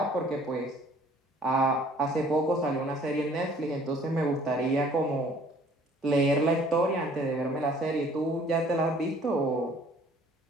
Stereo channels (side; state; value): both; normal; correlation 0.56